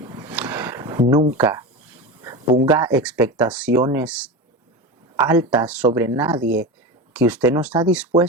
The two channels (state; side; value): normal; both; correlation 0.23